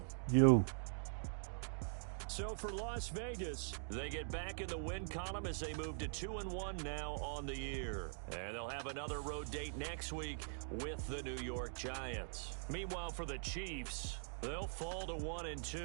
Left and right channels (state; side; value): silent; left; digital silence